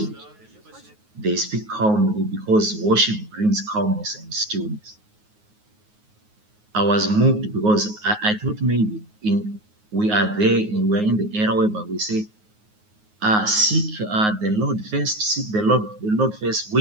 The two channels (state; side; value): late; left; 9.5 ms